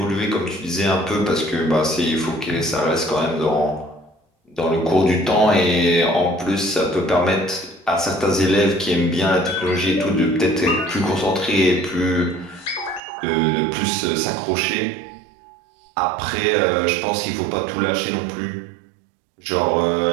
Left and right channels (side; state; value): left; drops out; at 13.0 s